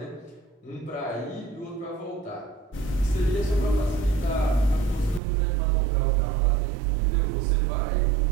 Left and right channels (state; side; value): drops out; left; at 5.2 s